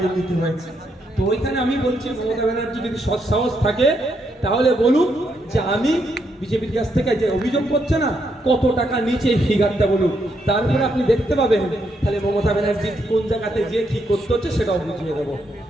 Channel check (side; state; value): both; normal; correlation 0.77